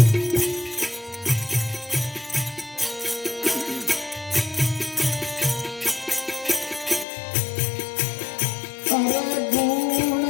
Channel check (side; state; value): right; drops out; at 7.1 s